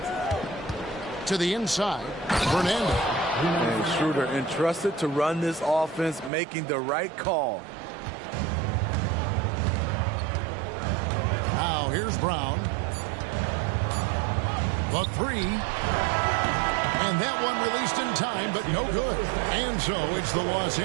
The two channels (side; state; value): left; drops out; at 6.3 s